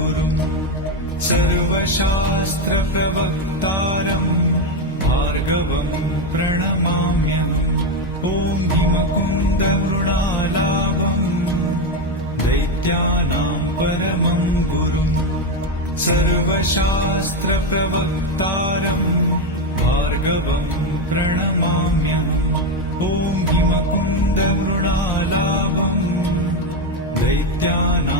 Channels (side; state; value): both; normal; correlation 0.10